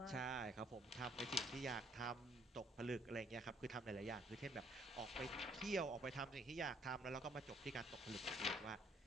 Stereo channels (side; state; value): both; normal; correlation 0.64